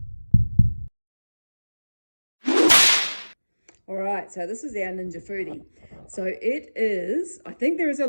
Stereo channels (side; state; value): both; inverted; correlation -1.00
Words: All right, so this is our Ninja Foodi. So it is, I think there is a